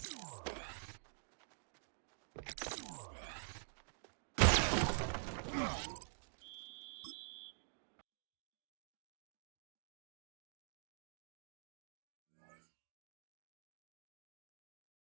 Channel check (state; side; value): silent; left; digital silence